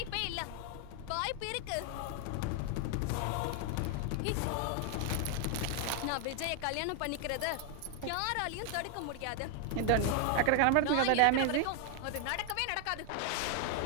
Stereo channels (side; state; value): both; different; correlation 0.00